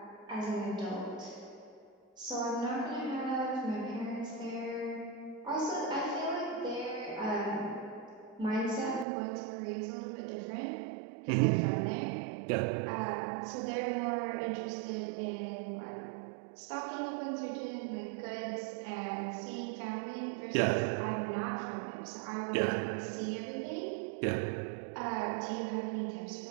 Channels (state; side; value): drops out; left; at 9.1 s